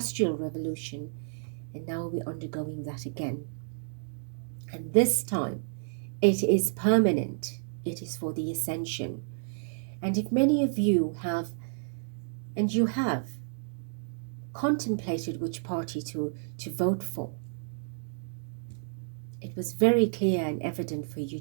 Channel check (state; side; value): silent; left; digital silence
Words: Revolution, and now we're undergoing that again. And this time, it is permanent. It is for the ascension. And if many of you have, and you have, contemplated which party to vote for, it was very clear and evident for you